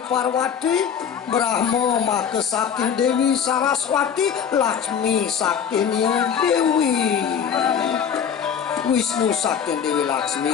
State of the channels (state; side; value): quieter; right; 7.7 dB